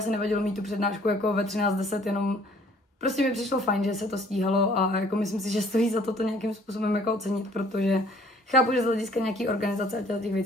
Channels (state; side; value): normal; both; correlation 0.57